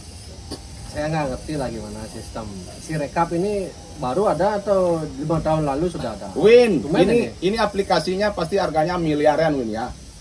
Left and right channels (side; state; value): both; identical; correlation 1.00